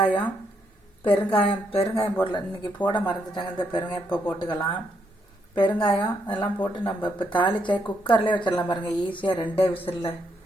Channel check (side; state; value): both; normal; correlation 0.76